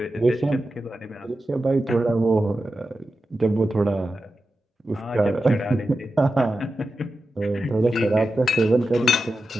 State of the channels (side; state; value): both; normal; correlation 0.91